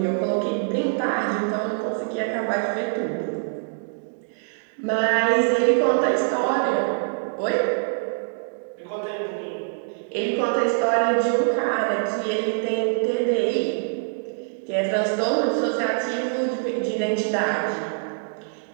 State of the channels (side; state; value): left; silent; digital silence